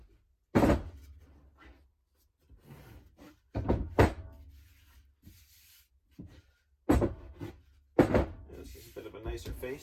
This is a bit of a nicer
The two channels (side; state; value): both; identical; correlation 1.00